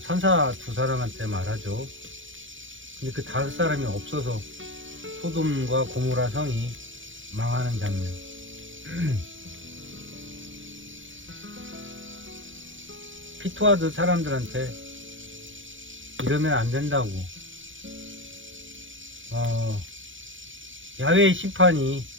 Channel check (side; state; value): left; late; 0.56 ms